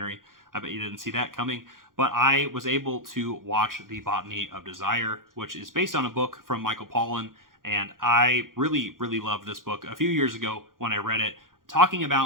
I bet you didn't see that coming, but I was able to watch The Botany of Desire, which is based on a book from Michael Pollan, and I really, really loved this book a few years ago when I read it, talking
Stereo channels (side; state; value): left; late; 0.90 ms